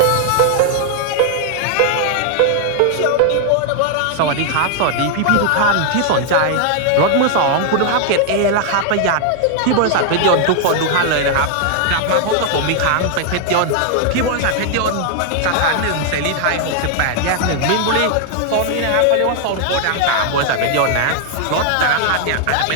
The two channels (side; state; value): both; different; correlation 0.00